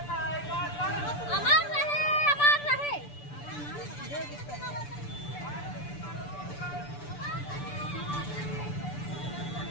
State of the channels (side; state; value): right; late; 6.9 ms